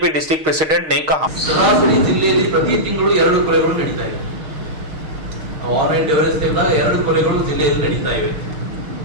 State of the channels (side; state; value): left; late; 6.4 ms